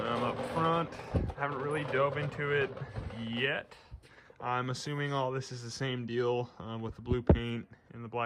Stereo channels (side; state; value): both; identical; correlation 1.00